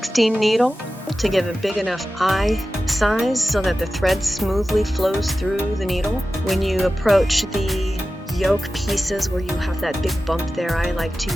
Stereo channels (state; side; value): normal; both; correlation 0.94